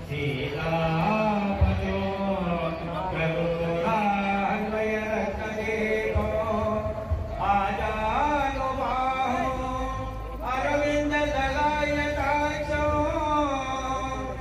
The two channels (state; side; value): identical; both; correlation 1.00